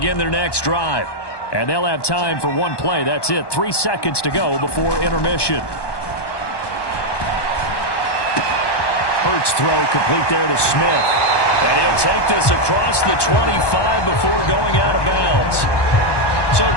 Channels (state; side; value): late; right; 1.2 ms